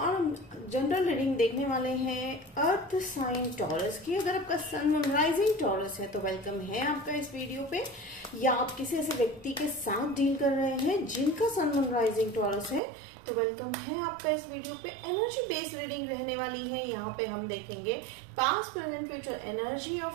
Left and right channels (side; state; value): left; drops out; at 12.8 s